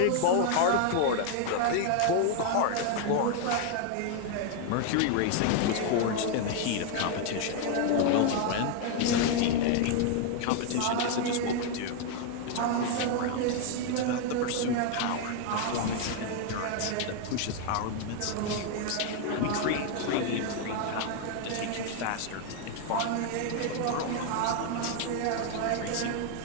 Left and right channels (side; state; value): both; different; correlation 0.00